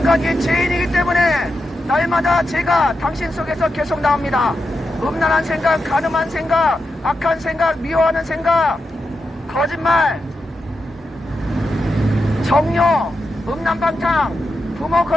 죄인이기 때문에 날마다 죄가 당신 속에서 계속 나옵니다. 음란한 생각, 간음한 생각, 악한 생각, 미워하는 생각, 거짓말, 정욕, 음란방탕, 부모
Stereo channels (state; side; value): normal; both; correlation 0.88